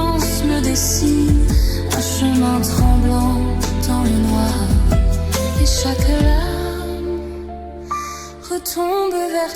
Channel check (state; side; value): identical; both; correlation 1.00